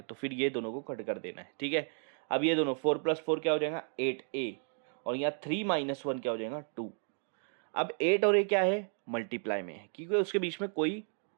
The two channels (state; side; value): silent; left; 56 dB below the other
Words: तो फिर ये दोनों को कट कर देना है, ठीक है। अब ये दोनों 4 + 4 क्या हो जाएगा, 8a, और यहाँ 3 - 1 क्या हो जाएगा, 2। अब 8 और a क्या है, मल्टीप्लाई में है, क्योंकि उसके बीच में कोई